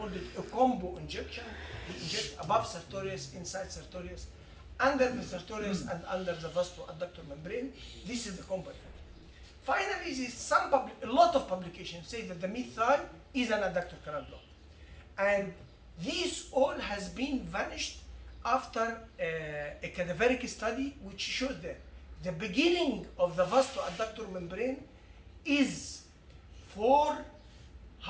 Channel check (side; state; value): both; identical; correlation 1.00